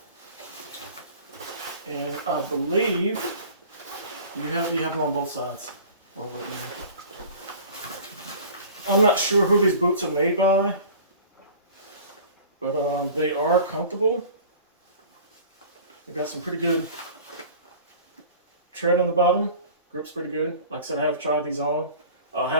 And I believe you have them on both sides. I'm not sure who these boots are made by, but they are comfortable. They got some pretty good tread on the bottom. Grip's pretty good. Like I said, I have tried these on. I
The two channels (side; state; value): both; inverted; correlation -0.43